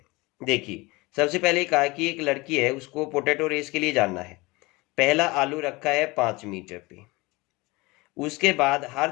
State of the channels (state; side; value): quieter; right; 23.4 dB